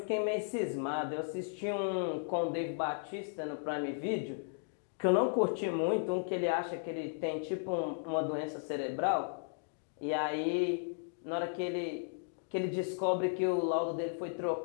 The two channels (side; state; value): right; silent; digital silence